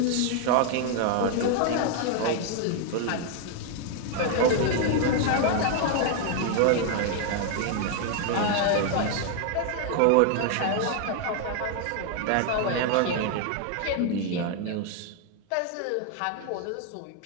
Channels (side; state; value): both; different; correlation 0.00